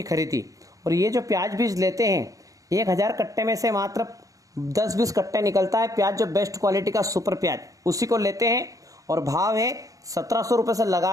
खरीदी। और ये जो प्याज बीज लेते हैं 1000 कट्टे में से मात्र 10-20 कट्टे निकलता है प्याज, जो बेस्ट क्वालिटी का सुपर प्याज, उसी को लेते हैं। और भाव है 1700 रुपये से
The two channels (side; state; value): left; late; 0.17 ms